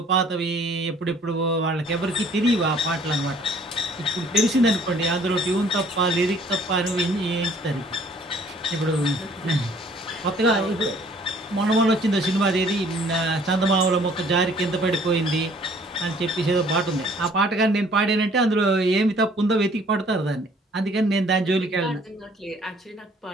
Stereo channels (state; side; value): normal; both; correlation 0.57